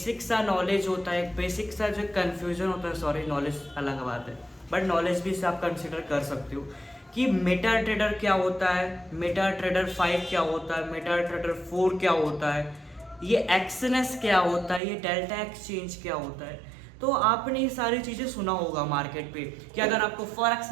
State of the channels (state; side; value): drops out; left; at 14.8 s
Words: सा नॉलेज होता है, एक बेसिक सा जो कन्फ्यूजन होता है, सॉरी नॉलेज अलग बात है बट नॉलेज भी से आप कंसिडर कर सकते हो कि मेटा ट्रेडर क्या होता है, मेटा ट्रेडर 5 क्या होता है, मेटा ट्रेडर 4 क्या होता है, ये एक्सएनएस क्या होता है, ये डेल्टा एक्सचेंज क्या होता है। तो आपने ये सारी चीज़ें सुना होगा मार्केट पे कि अगर आपको फॉरेक्स